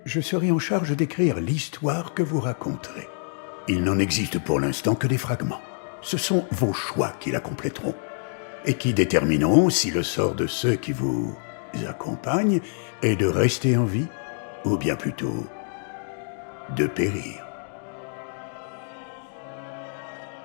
Je serai en charge d'écrire l'histoire que vous raconterez. Il n'en existe pour l'instant que des fragments. Ce sont vos choix qui la compléteront et qui détermineront si le sort de ceux qui vous accompagnent est de rester en vie ou bien plutôt de périr.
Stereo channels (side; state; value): right; silent; 61 dB below the other